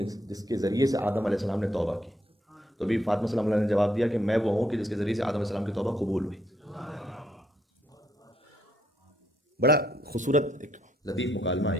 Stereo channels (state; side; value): normal; both; correlation 0.73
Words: جس کے ذریعے سے آدم علیہ السلام نے توبہ کی، تو بی بی فاطمہ سلام اللہ نے جواب دیا کہ میں وہ ہوں کہ جس کے ذریعے سے آدم علیہ السلام کی توبہ قبول ہوئی۔ بڑا خوبصورت ایک لطیف مکالمہ ہے